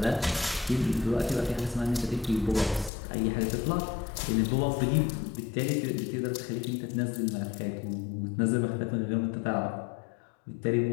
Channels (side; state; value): right; drops out; at 2.9 s